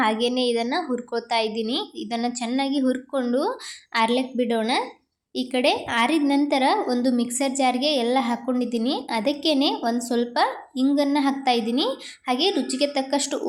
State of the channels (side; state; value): both; identical; correlation 1.00